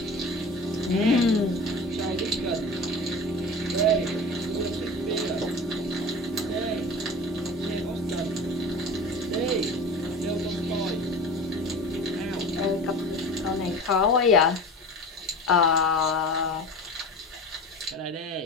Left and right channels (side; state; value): both; normal; correlation 0.35